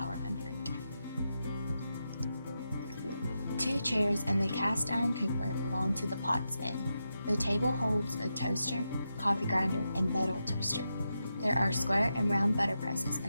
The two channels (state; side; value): inverted; both; correlation -0.87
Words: under it. 2 chairs and the cast iron cooker belong to the Potts Inn. The table holds a toaster, coffee grinder, and metal toaster. There are square and round butter presses